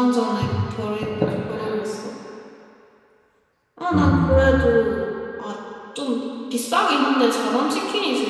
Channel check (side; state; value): both; identical; correlation 1.00